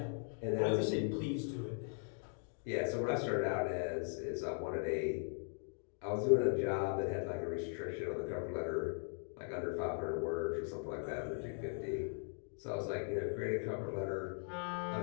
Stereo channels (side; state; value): right; silent; 52 dB below the other